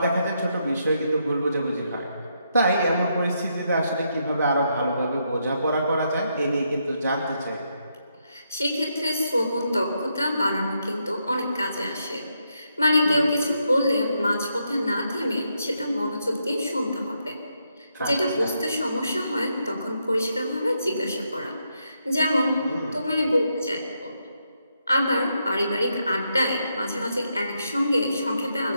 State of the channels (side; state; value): both; inverted; correlation -0.80